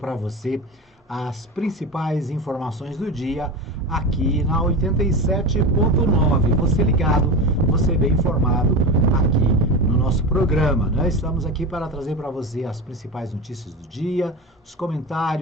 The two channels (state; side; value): normal; both; correlation 0.24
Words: você as principais informações do dia aqui na 87.9. Você ligado, você bem informado aqui no nosso programa, né? Estamos aqui para trazer para você as principais notícias do dia, os